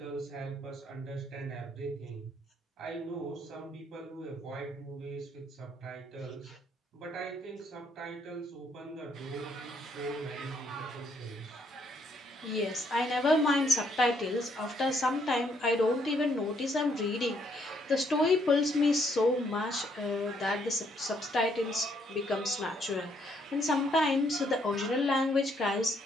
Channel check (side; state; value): both; normal; correlation 0.71